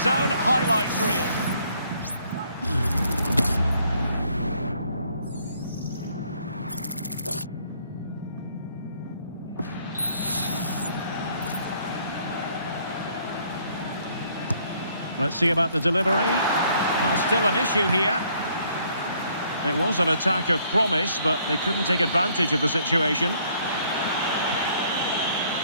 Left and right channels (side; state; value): both; inverted; correlation -0.65